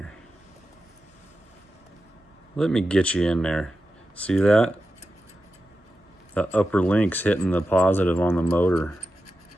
Let me get you in there. See that? The upper link's hitting the positive on the motor.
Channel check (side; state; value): both; normal; correlation 0.91